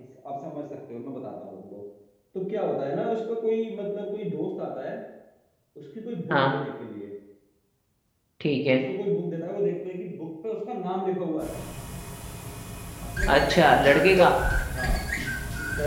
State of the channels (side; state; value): both; identical; correlation 1.00